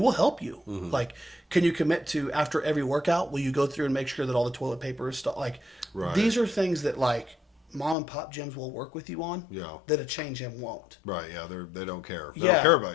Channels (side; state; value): right; drops out; at 8.0 s